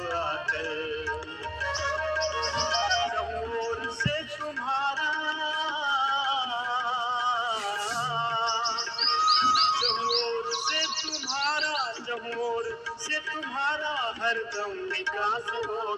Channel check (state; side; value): identical; both; correlation 1.00